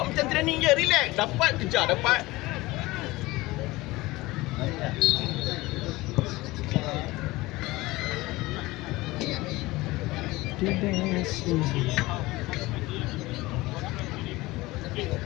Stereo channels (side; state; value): right; quieter; 20.2 dB